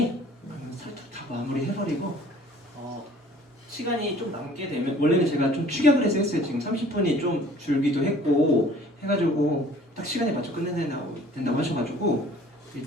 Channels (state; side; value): normal; both; correlation 0.52